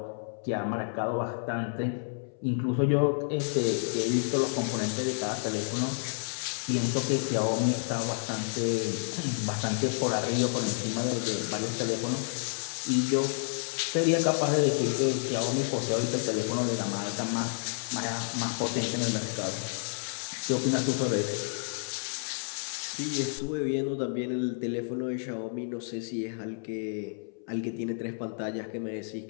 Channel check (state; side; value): silent; right; 57 dB below the other